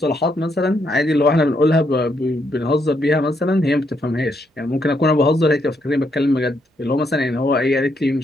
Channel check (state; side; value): normal; both; correlation 0.76